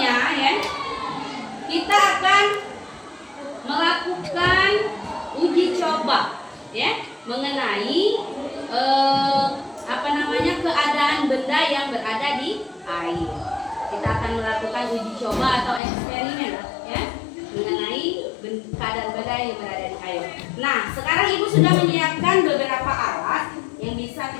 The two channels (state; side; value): drops out; right; at 15.8 s